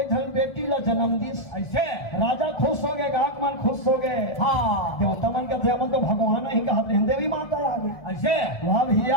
धन बेटी ला जन्म दिस ऐसे राजा खुश हो गए, गाहक मन खुश हो गए। हाँ देवता मन का थे तो भगवान ही कहते हैं, देवी माता आ गई। ऐसे वाह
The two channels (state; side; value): late; right; 1.7 ms